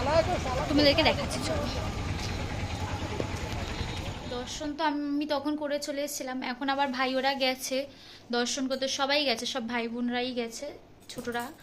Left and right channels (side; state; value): both; identical; correlation 1.00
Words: তোমাদেরকে দেখাচ্ছি, চলো। দর্শন তো আমি তখন করে চলে এসেছিলাম, এখন আবার ভাই ওরা গেছে দর্শন করতে, সবাই গেছে, সব ভাই বোনরাই গেছে, ছোটরা।